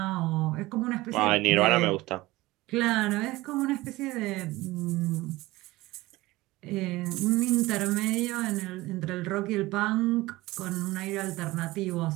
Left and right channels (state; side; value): quieter; left; 19.3 dB